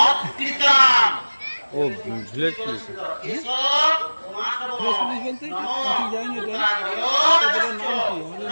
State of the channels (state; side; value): inverted; both; correlation -1.00